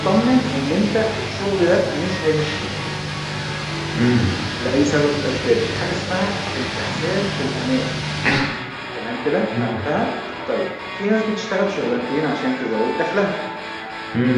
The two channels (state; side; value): identical; both; correlation 1.00